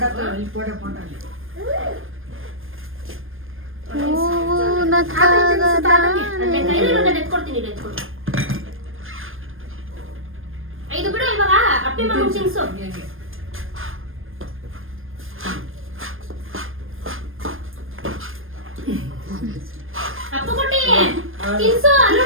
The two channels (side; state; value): left; late; 0.59 ms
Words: ಐದು ಬಿಡು ಇವಾಗ ಅಪ್ಪಿ ಮಗನ್ ತಿನ್ಸು. ಅಪ್ಪ ಕೊಟ್ಟಿ ತಿನ್ಸು.